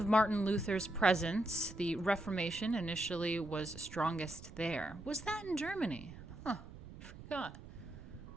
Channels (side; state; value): right; noise; rumble, 15 dB below the sound